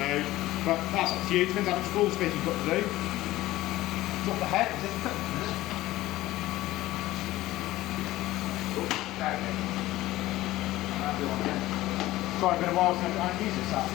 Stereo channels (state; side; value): quieter; right; 16.7 dB